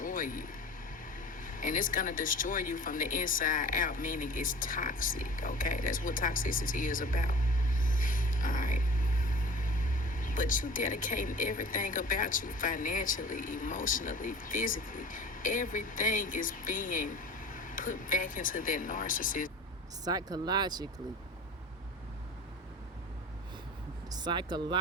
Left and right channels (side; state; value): both; normal; correlation 0.41